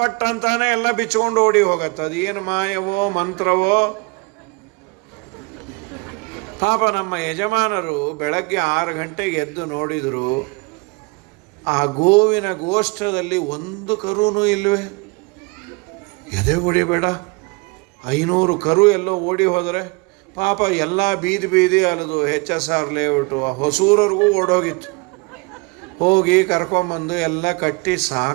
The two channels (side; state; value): left; quieter; 29.1 dB